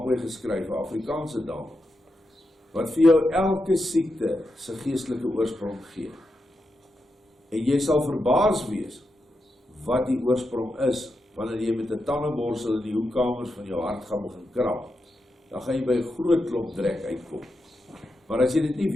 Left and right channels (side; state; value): both; normal; correlation 0.87